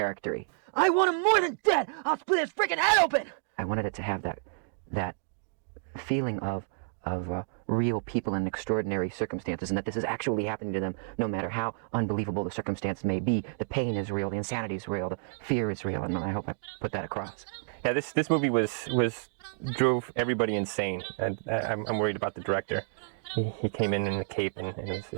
I want him more than dead! I'll split his freaking head open! I wanted it to have that feeling of real people in extraordinary circumstances, and that this is actually happening to them, no matter how unbelievable the circumstance may be. The pain is real, the insanity is real, the fear is real, and I hope I put that across. Yeah, this movie drove everybody insane, and I'm worried about the director. He came in the cape, and it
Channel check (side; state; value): left; silent; digital silence